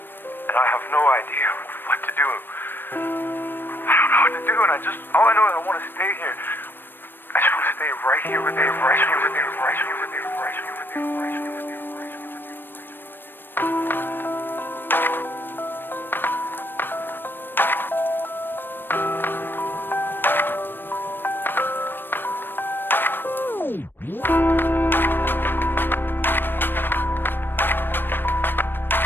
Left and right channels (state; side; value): late; right; 0.096 ms